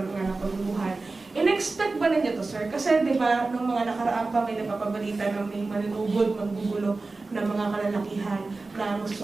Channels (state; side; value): quieter; left; 3.6 dB